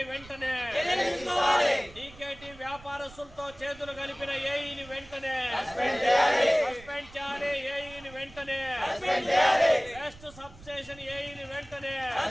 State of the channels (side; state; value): right; noise; rumble, 21 dB below the sound